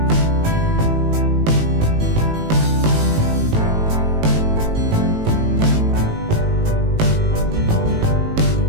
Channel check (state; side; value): late; left; 18 ms